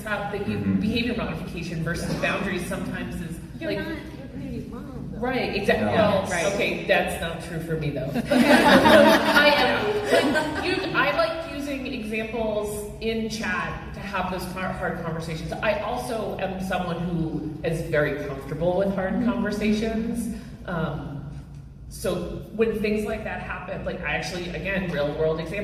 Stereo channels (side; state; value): both; identical; correlation 1.00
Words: how behavior modification versus boundaries sometimes is You're like. not your community mom, though. Right, exactly. No. Well, Right. Okay, that's not true for me though. I like using examples in chat to have those hard conversations. I also am someone who is very comfortable with hard conversations. So when things like that happen, like I actually, again, real world